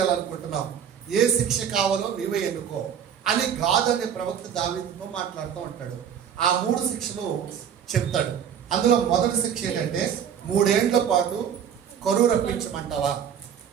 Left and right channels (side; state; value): left; quieter; 8.4 dB